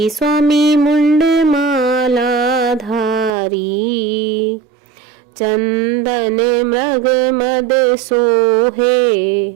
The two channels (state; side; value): drops out; left; at 3.3 s